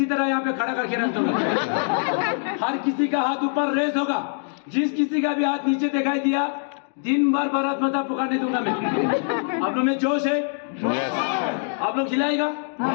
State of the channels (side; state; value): right; silent; 63 dB below the other